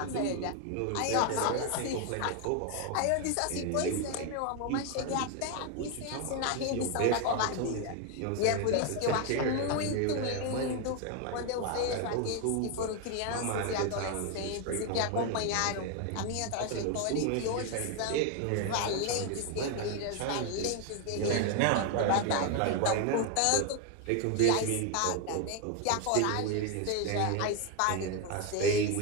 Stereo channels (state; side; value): different; both; correlation 0.01